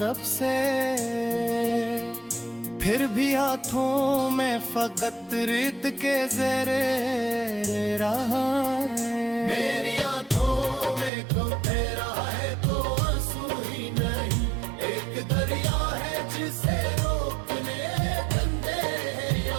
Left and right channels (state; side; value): drops out; left; at 11.1 s